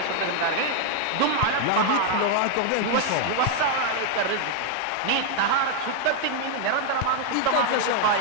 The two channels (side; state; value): both; different; correlation 0.00